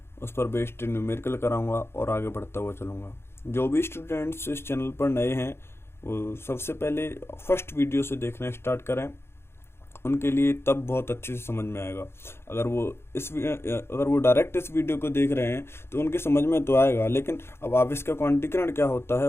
उस पर बेस्ड न्यूमेरिकल कराऊंगा और आगे बढ़ता हुआ चलूंगा। जो भी स्टूडेंट्स इस चैनल पर नए हैं वो सबसे पहले फर्स्ट वीडियो से देखना स्टार्ट करें, उनके लिए तब बहुत अच्छे से समझ में आएगा। अगर वो डायरेक्ट इस वीडियो को देख रहे हैं तो उनकी समझ में तो आएगा, लेकिन अब आवेश का क्वांटीकरण क्या होता है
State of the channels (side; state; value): right; late; 0.12 ms